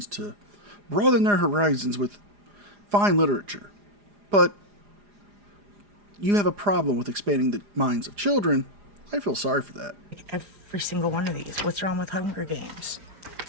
to broaden their horizons with fine literature. But you have a problem with expanding the minds of children. I feel sorry for that. Every single one of these. What's wrong with Hunger Games?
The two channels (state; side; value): late; left; 4.9 ms